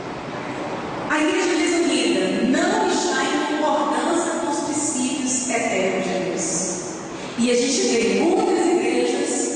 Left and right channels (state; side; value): identical; both; correlation 1.00